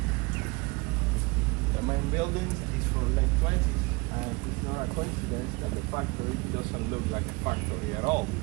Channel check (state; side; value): quieter; left; 26.1 dB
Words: The main building is from late 20s, and it's not a coincidence that the factory doesn't look like a factory at all.